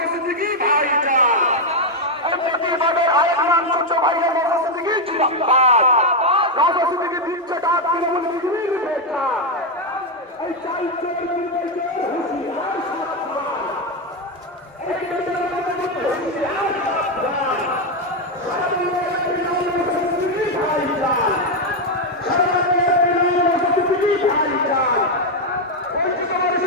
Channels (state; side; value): normal; both; correlation 0.03